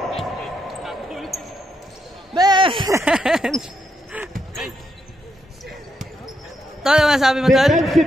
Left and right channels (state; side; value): normal; both; correlation 0.80